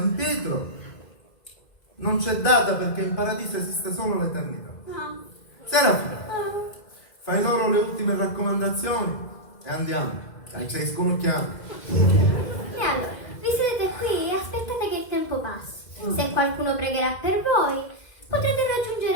Pietro, non c'è data perché in paradiso esiste solo l'eternità. Serafina, fai loro le ultime raccomandazioni e andiamo, che sei sconocchiato. E allora, vi sedete qui e aspettate che il tempo passi. Se qualcuno pregherà per voi, potrete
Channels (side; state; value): right; late; 2.0 ms